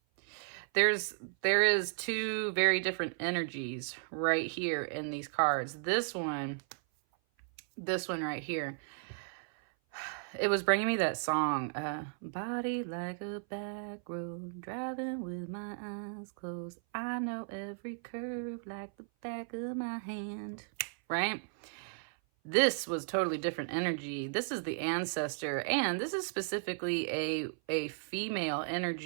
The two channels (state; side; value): silent; left; 55 dB below the other